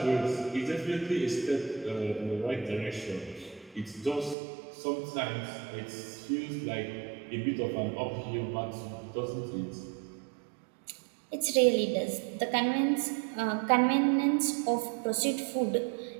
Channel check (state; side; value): drops out; left; at 4.4 s